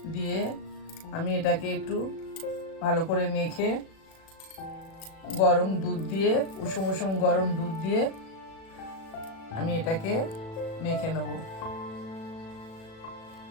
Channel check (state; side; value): late; right; 37 ms